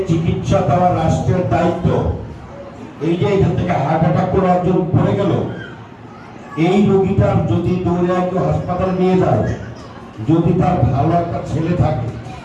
চিকিৎসা দেওয়ার রাষ্ট্রের দায়িত্ব। এই যে এখান থেকে হার্ট অ্যাটাক করে একজন পড়ে গেল, এই রোগীটার যদি দৌড়ে কেউ হাসপাতালে নিয়ে যায়, যদি তার ভালো একটা ছেলে থাকে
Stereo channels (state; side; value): identical; both; correlation 1.00